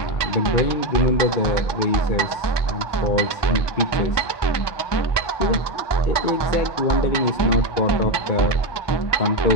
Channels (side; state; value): right; late; 1.2 ms